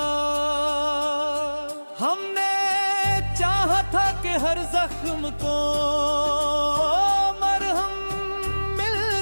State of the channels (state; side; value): inverted; both; correlation -1.00